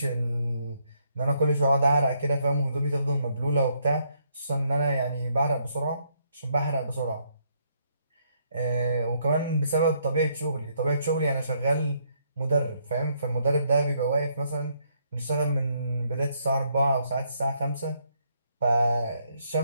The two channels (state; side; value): inverted; both; correlation -0.72